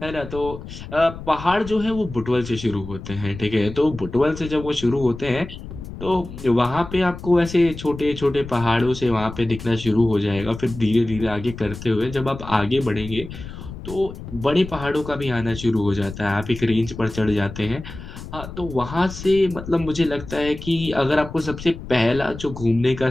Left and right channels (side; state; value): left; noise; rumble, 12 dB below the sound